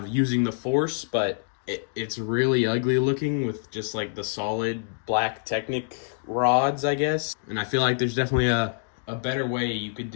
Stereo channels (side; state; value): right; silent; digital silence